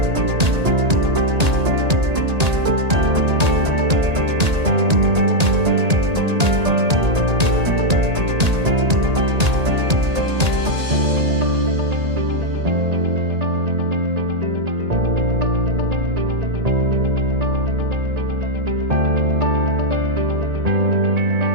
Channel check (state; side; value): late; left; 1.8 ms